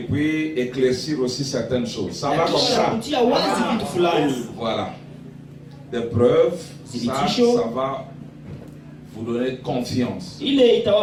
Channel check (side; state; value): both; identical; correlation 1.00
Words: éclaircir aussi certaines choses. Ça va comme ça. Voilà. Des preuves, ça va vous donner confiance